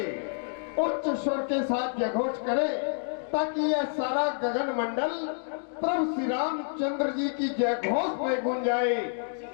उच्च स्वर के साथ जयघोष करें ताकि यह सारा गगन मंडल प्रभु श्री रामचंद्र जी की जयघोष में गूंज जाए।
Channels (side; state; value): right; silent; digital silence